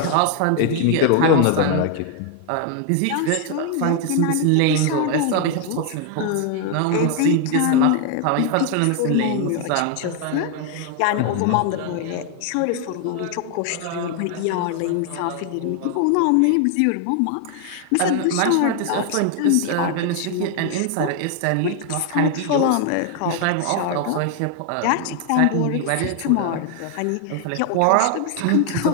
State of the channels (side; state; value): both; different; correlation 0.00